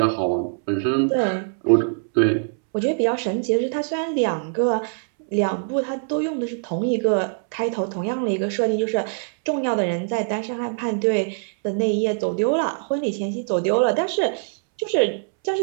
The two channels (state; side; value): silent; left; 64 dB below the other